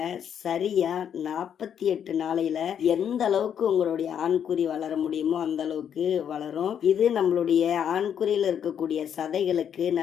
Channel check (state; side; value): quieter; right; 8.6 dB